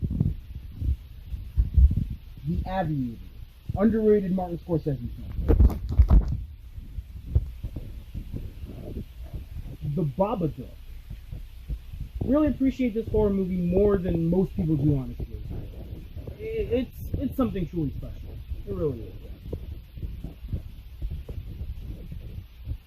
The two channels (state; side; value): identical; both; correlation 1.00